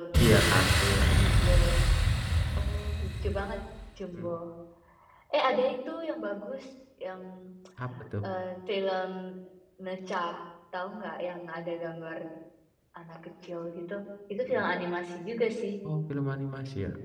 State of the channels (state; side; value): identical; both; correlation 1.00